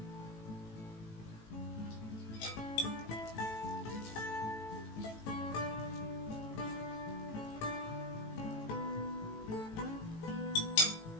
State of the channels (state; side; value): late; right; 18 ms